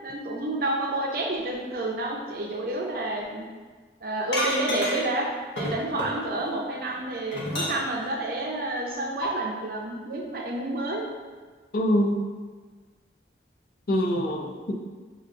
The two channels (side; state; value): both; normal; correlation 0.24